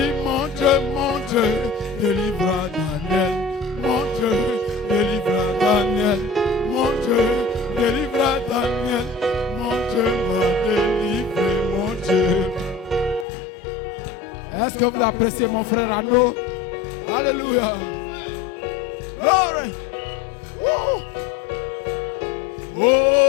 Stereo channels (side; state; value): right; drops out; at 13.2 s